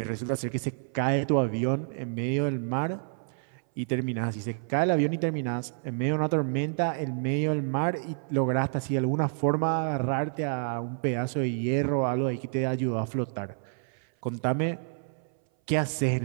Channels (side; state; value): left; silent; 59 dB below the other